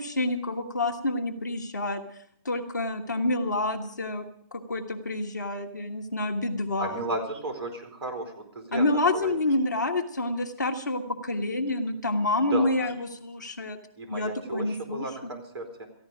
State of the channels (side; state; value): both; inverted; correlation -0.52